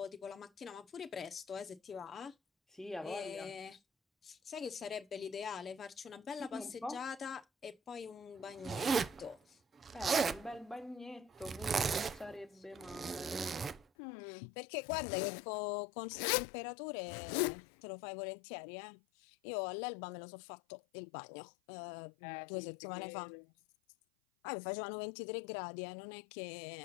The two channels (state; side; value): drops out; right; at 13.9 s